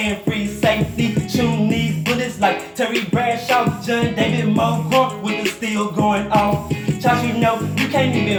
free safety. Shooting these bullets like Terry Bradshaw, John David Moore with the steel going off. Josh, you know you can't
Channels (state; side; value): identical; both; correlation 1.00